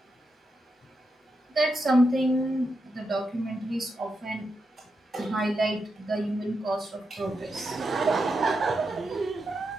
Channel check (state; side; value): normal; both; correlation 0.86